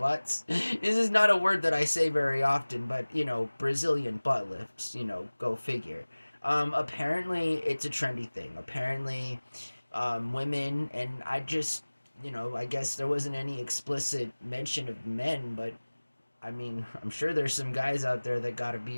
This is not a word that I say very often, but Brazilian butt lifts, go figure. Apparently, it's a trendy thing. Apparently, women, and I guess there wasn't any explicit mention of men, but I mean, I'm sure there's some guys out there that got a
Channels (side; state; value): both; inverted; correlation -1.00